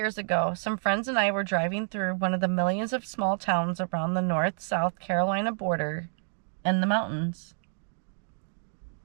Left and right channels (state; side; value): silent; left; 59 dB below the other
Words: ago, some friends and I were driving through one of the millions of small towns around the North-South Carolina border in the mountains.